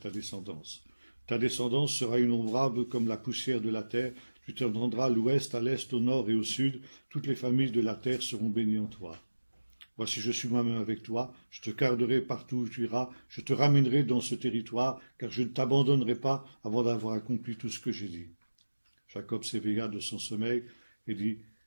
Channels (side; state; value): both; inverted; correlation -1.00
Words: descendance. Ta descendance sera innombrable comme la poussière de la terre. Tu t'étendras à l'ouest, à l'est, au nord et au sud. Toutes les familles de la terre seront bénies en toi. Voici, je suis moi-même avec toi. Je te garderai partout où tu iras. Je te ramènerai dans ce territoire, car je ne t'abandonnerai pas avant d'avoir accompli tout ce que j'ai dit. Jacob s'éveilla de son sommeil et dit,